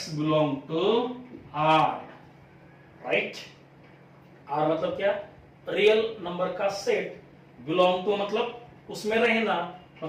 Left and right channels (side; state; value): both; identical; correlation 1.00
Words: belong to r, right. r मतलब क्या? रियल नंबर का सेट। बिलोंग टू मतलब उसमें रहना,